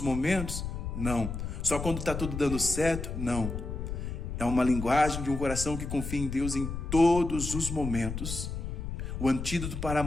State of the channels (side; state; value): left; noise; rumble, 5 dB below the sound